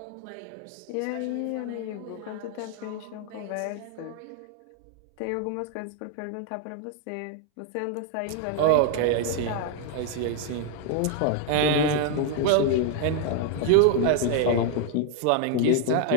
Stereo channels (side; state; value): both; different; correlation 0.00